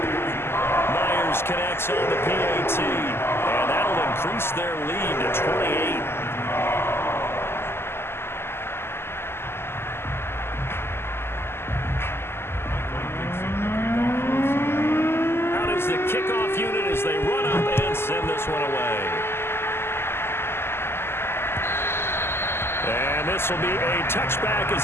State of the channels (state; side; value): late; right; 0.12 ms